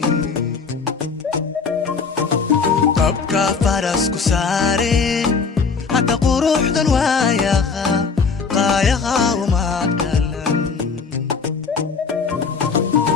abka farasku saare hadda quruxdan waayaha qaayaha uma galan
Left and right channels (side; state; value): right; quieter; 5.1 dB